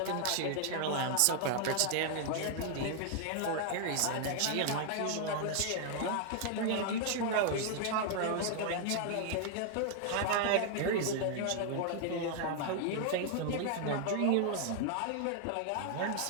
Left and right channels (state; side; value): different; both; correlation 0.00